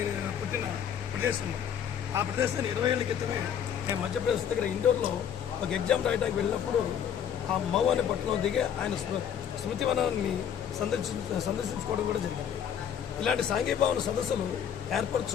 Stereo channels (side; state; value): right; quieter; 8.7 dB